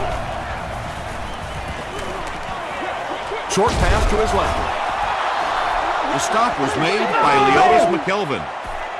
Short pass to his left. The stop was made by Leotis McKelvin.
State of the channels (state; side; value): identical; both; correlation 1.00